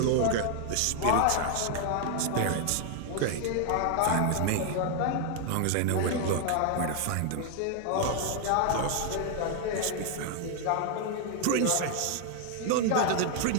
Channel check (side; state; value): both; different; correlation 0.00